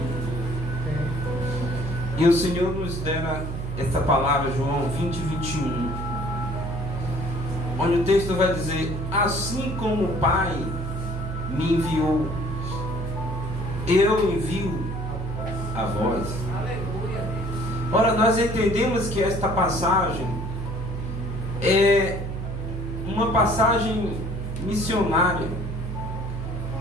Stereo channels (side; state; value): right; noise; hum, 5 dB below the sound